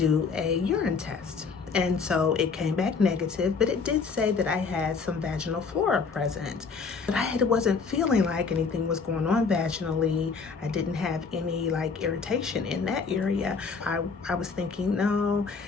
a urine test. And so it came back negative, but it did say that I had some vaginal flora present. But I wasn't feeling like anything was going on vaginally. I didn't have any like irritation in that area. I was thinking, no,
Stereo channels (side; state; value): right; quieter; 5.1 dB